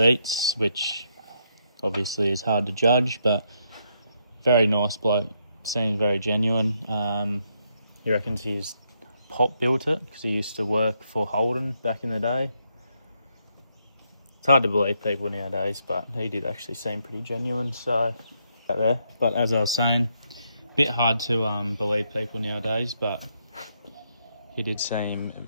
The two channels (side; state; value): both; inverted; correlation -0.77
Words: which obviously is hard to judge, but very nice bloke. Seems very genuine. He reckons his pop built it because he used to work for Holden back in the day. It's hard to believe people nowadays, but he did actually seem pretty genuine. So, there. But as I was saying, a bit hard to believe people nowadays, but he did seem